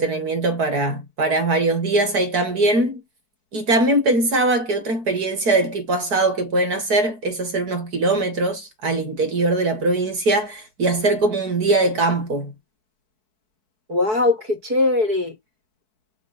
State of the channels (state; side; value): late; left; 4.6 ms